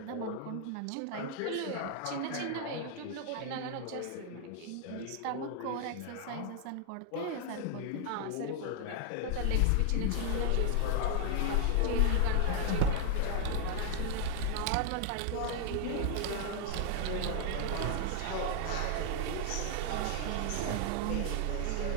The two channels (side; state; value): both; different; correlation 0.00